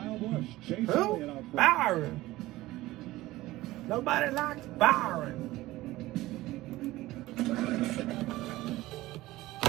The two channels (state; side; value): quieter; left; 17.6 dB